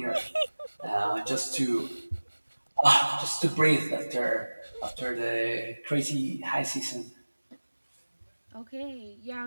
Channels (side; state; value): both; inverted; correlation -1.00